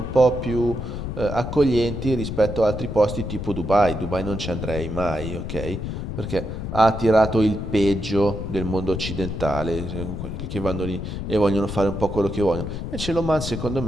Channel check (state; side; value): noise; left; rumble, 6 dB below the sound